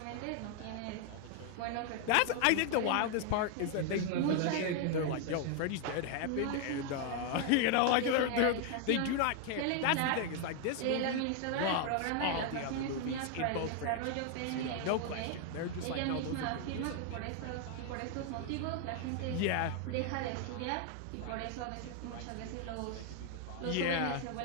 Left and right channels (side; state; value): both; different; correlation 0.00